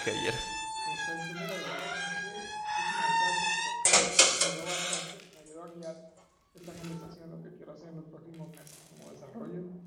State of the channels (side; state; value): both; identical; correlation 1.00